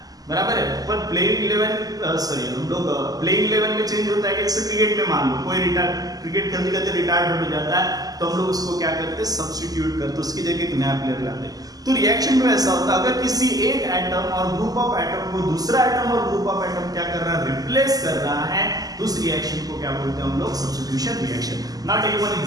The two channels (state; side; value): late; left; 0.18 ms